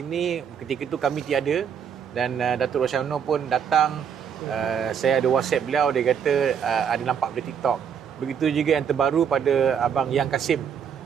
ketika itu kami tiada dan Datuk Rashamno pun datang. Saya ada WhatsApp beliau, dia kata ada nampak di TikTok. Begitu juga yang terbaru pada Abang Yang Kasim,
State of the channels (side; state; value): left; quieter; 7.7 dB